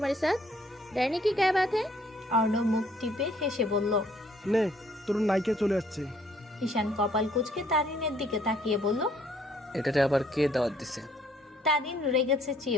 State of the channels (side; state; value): both; normal; correlation 0.64